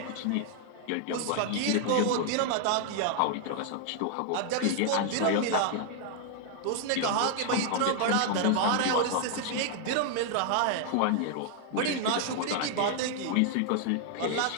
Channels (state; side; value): different; both; correlation 0.00